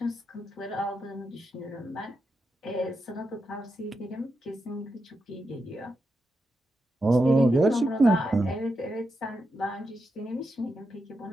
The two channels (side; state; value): both; normal; correlation 0.86